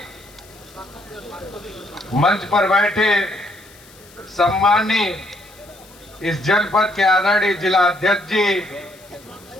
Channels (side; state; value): left; noise; hiss, 24 dB below the sound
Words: मंच पर बैठे सम्मानीय इस जनपद के आदरणीय जिला अध्यक्ष जी,